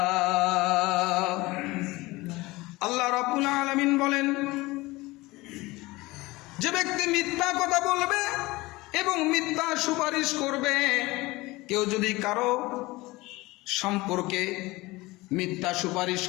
আল্লাহ রাব্বুল আলামিন বলেন, যে ব্যক্তি মিথ্যা কথা বলবে এবং মিথ্যা সুপারিশ করবে, কেউ যদি কারো সম্পর্কে মিথ্যা সুপারিশ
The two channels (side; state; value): right; quieter; 21.1 dB